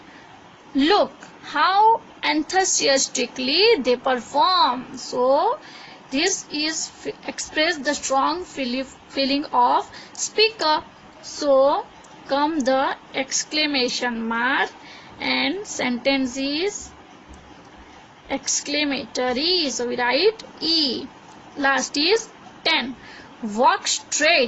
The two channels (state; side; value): identical; both; correlation 1.00